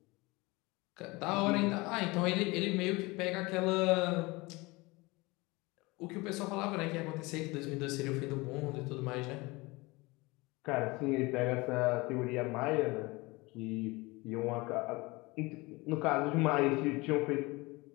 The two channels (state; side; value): quieter; right; 23.5 dB